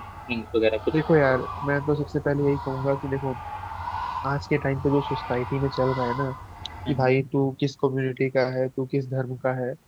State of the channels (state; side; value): identical; both; correlation 1.00